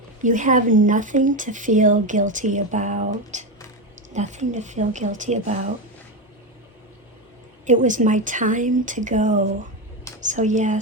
You have nothing to feel guilty about. Nothing to feel guilty about. It was my time to go. So yeah,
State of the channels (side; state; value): both; normal; correlation 0.13